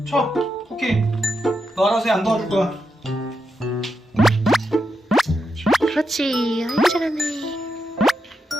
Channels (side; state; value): both; normal; correlation 0.85